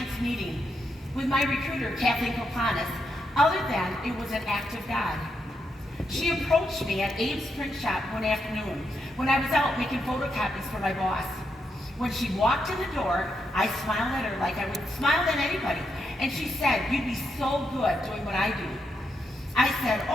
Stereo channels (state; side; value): normal; both; correlation 0.82